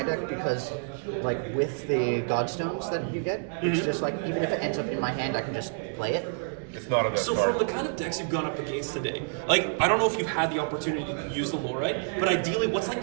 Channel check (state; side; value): silent; left; 58 dB below the other